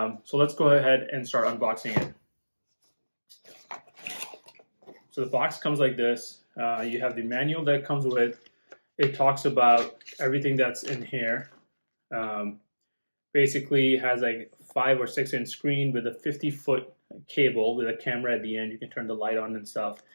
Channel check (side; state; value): both; inverted; correlation -1.00